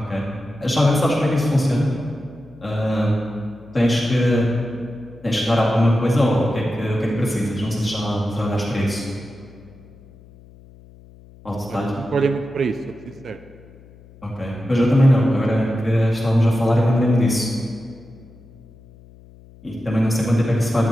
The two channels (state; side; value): noise; left; hum, 23 dB below the sound